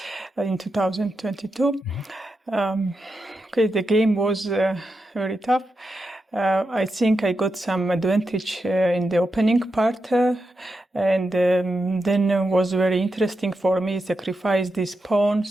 in 2022. The game was very tough. I think I got some advantage in the opening part, and then it was very interesting for me sacrifice these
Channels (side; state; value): both; normal; correlation 0.87